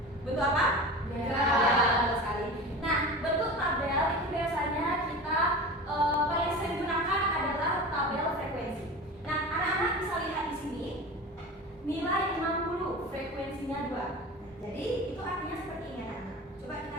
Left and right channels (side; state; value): both; normal; correlation 0.32